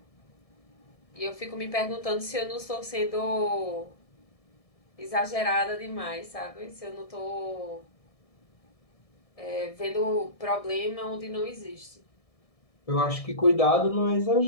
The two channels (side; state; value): right; late; 1.7 ms